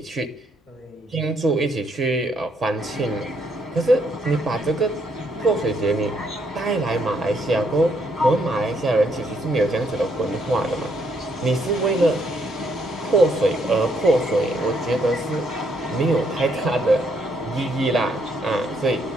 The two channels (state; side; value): normal; both; correlation 0.72